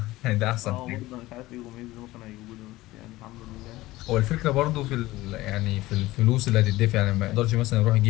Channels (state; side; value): quieter; right; 18.0 dB